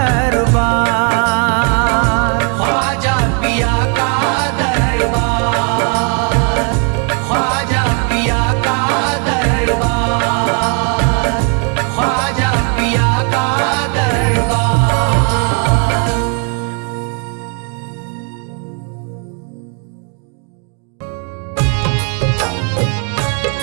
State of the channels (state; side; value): quieter; left; 39.1 dB